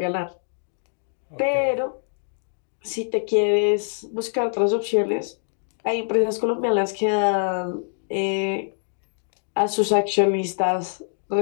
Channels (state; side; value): silent; right; digital silence